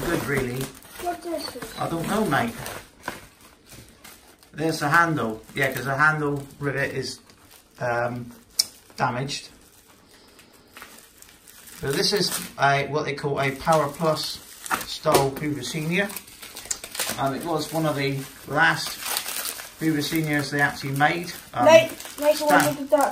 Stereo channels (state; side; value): identical; both; correlation 1.00